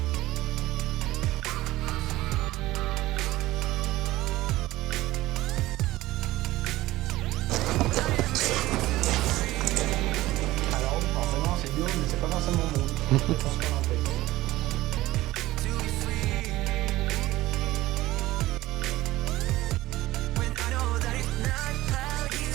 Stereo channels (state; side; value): quieter; left; 17.2 dB